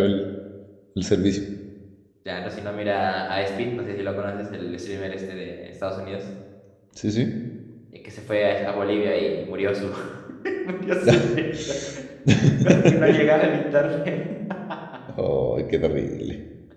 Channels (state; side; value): identical; both; correlation 1.00